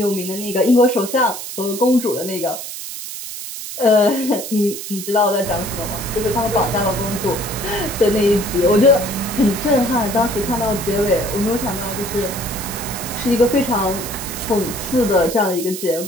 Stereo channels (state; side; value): noise; right; hiss, 8 dB below the sound